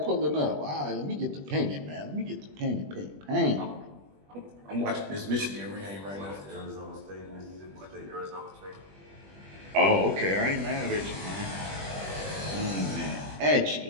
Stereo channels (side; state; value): left; late; 20 ms